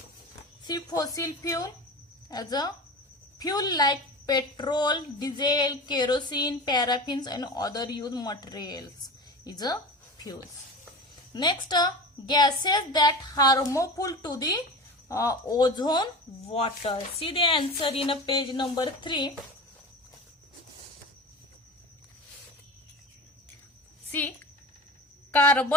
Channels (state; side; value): normal; both; correlation 0.31